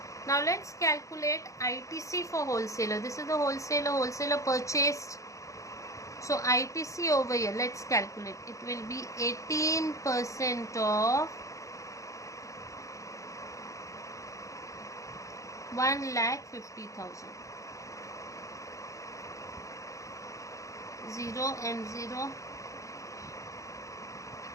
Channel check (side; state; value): right; late; 0.15 ms